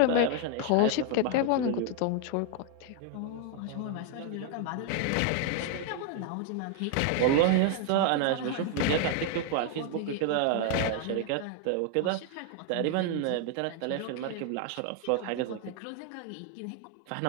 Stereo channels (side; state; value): both; different; correlation 0.00